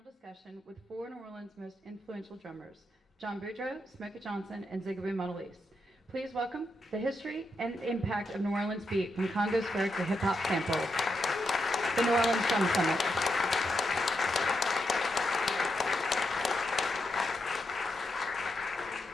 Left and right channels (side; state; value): both; normal; correlation 0.84